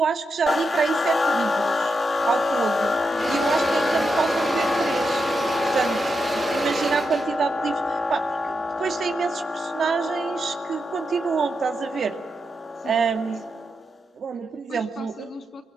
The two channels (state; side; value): normal; both; correlation 0.85